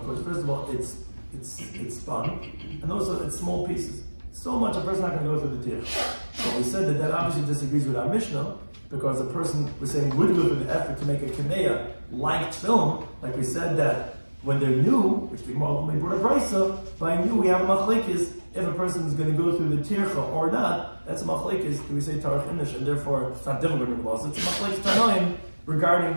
because first of all, it's spun, and also it's small pieces. So much a person's not going to go through the tear. So we said that obviously disagrees with our Mishnah, because a person, we're saying, would go through the effort to make a kameya like film, like we said that when they're new, which the Gemara ultimately brought a brisa, by new we have a machlekes, if a person is going to go through the tircha or not, that's a machlekes, do we say tarach inish, and therefore it's not difficult in the laws, it's a machlekes tanoim regarding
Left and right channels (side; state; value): both; inverted; correlation -1.00